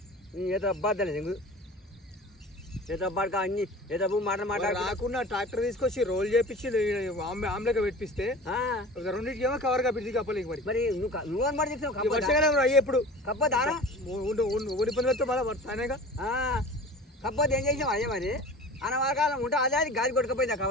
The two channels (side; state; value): both; normal; correlation 0.38